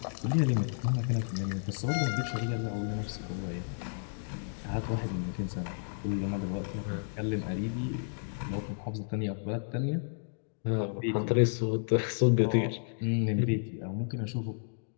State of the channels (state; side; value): silent; right; digital silence